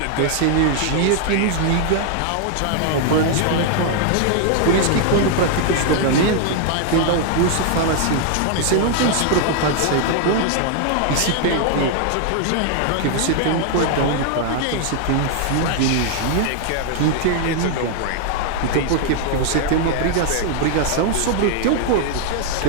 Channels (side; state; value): both; different; correlation 0.00